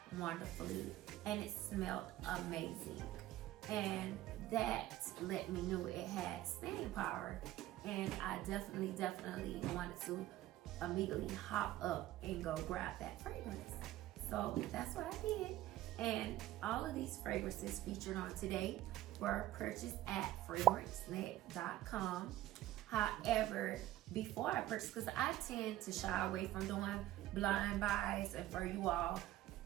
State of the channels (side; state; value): left; quieter; 14.9 dB